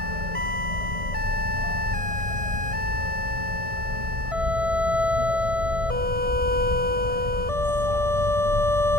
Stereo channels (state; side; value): late; left; 1.6 ms